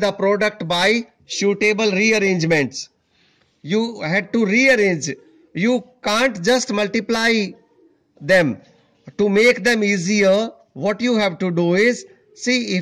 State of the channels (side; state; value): both; identical; correlation 1.00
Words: product by suitable rearrangements. You had to rearrange. You can't just multiply them. To make them easier, what you have to do is, see,